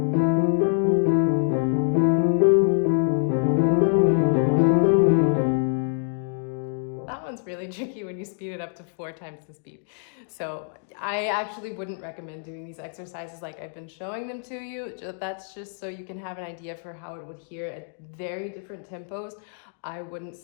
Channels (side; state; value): right; silent; digital silence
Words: Really tricky when you speed it up to 4 times the speed. So I actually wouldn't recommend doing these exercises like I've been showing them to you. That's just so you can have an idea for how it would hear at very different tempos. I wouldn't